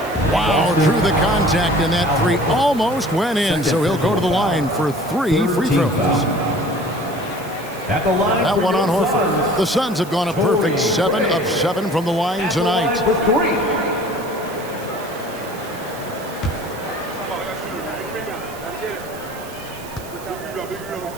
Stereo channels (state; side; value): noise; right; hiss, 18 dB below the sound